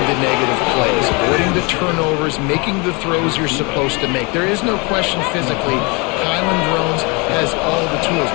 the negative plays, avoiding the turnovers, making the throws you're supposed to make. There is no question physically, Kylan Drones has all the tools.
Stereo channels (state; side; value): quieter; right; 29.0 dB